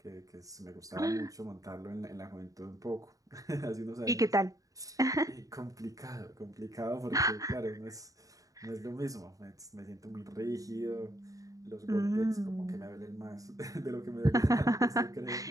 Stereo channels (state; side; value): late; left; 0.17 ms